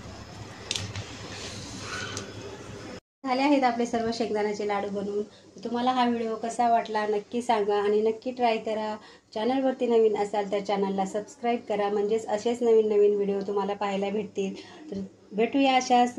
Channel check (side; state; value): both; identical; correlation 1.00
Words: झाले आहेत आपले सर्व शेंगदाण्याचे लाडू बनवून. तुम्हाला हा व्हिडिओ कसा वाटला नक्की सांगा आणि नक्की ट्राय करा. चॅनलवरती नवीन असाल तर चॅनलला सबस्क्राईब करा, म्हणजेच असेच नवीन नवीन व्हिडिओ तुम्हाला पाहायला भेटतील. तर भेटूया अशाच